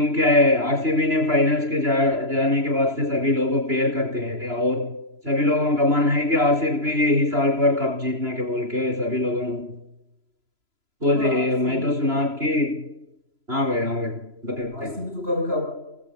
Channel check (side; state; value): left; late; 3.0 ms